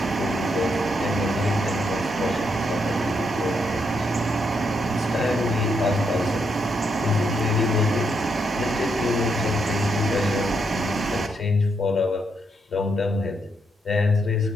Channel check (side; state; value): both; normal; correlation 0.78